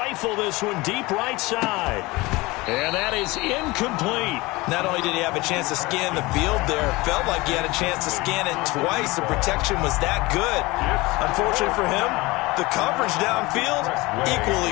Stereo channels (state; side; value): quieter; right; 22.1 dB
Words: this one deep right side. And that is incomplete. Not only did he have a chance to scan the field there, it felt like he had a chance to scan it twice. The protection was that good. Unfortunately for him, the coverage downfield,